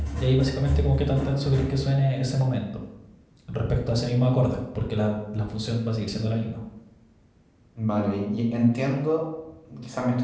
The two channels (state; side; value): identical; both; correlation 1.00